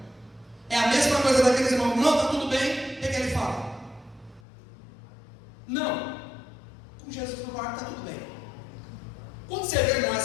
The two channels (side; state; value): right; drops out; at 4.4 s